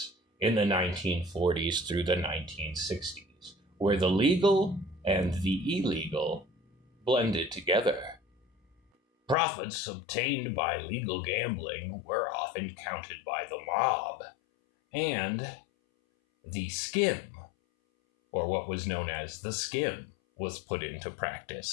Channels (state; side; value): drops out; right; at 9.3 s